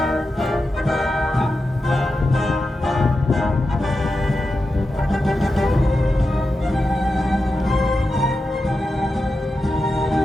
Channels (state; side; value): normal; both; correlation 0.90